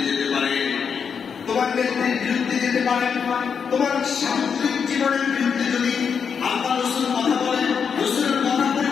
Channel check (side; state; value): right; quieter; 6.6 dB